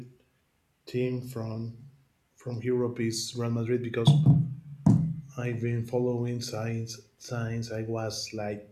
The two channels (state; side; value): identical; both; correlation 1.00